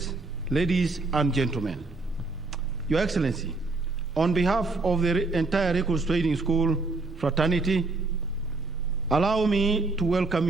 ladies and gentlemen. Your Excellency, on behalf of the entire Recruits Training School fraternity, allow me to welcome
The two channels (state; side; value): quieter; left; 3.5 dB